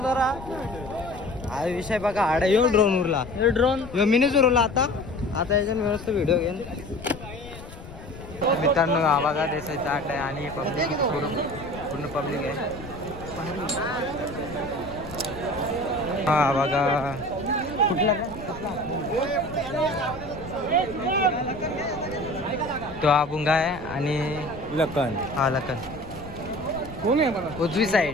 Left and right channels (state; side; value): noise; left; rumble, 14 dB below the sound